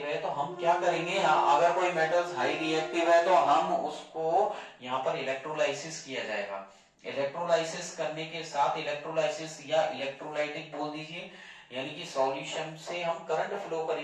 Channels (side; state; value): both; identical; correlation 1.00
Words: है तो हम क्या करेंगे, अगर कोई मेटल्स हाई रिएक्टिव है तो हम उसको यहाँ पर इलेक्ट्रोलाइसिस किया जाएगा। इलेक्ट्रोलाइसिस करने के साथ, इलेक्ट्रोलाइसिस या इलेक्ट्रोलाइटिक बोल दीजिए, यानी कि सॉल्यूशन से हम करंट फ्लो